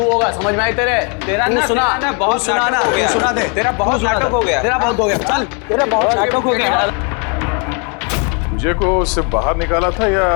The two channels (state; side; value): quieter; right; 36.0 dB